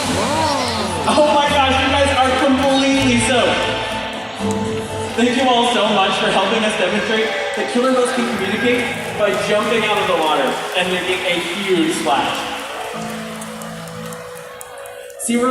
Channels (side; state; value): both; identical; correlation 1.00